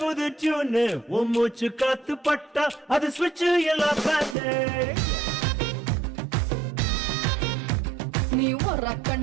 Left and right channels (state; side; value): drops out; left; at 4.4 s